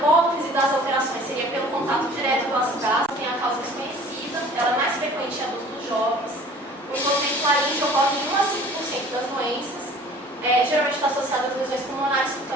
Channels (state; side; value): normal; both; correlation 0.48